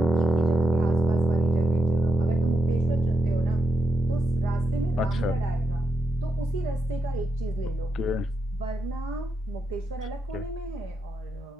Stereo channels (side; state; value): both; normal; correlation 0.85